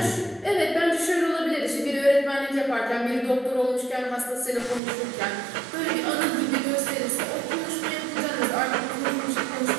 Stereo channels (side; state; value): left; drops out; at 4.8 s